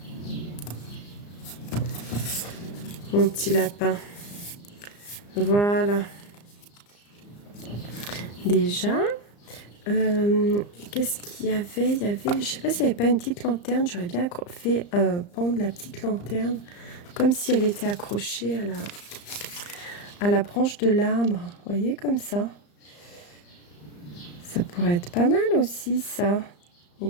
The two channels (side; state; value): right; late; 34 ms